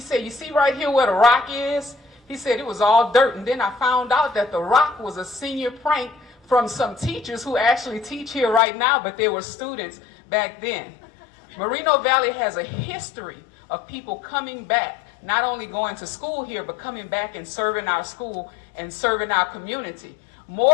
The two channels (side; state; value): right; drops out; at 8.6 s